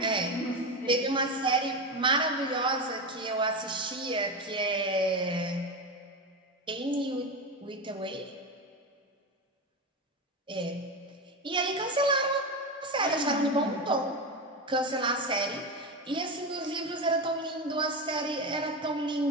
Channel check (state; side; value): normal; both; correlation 0.18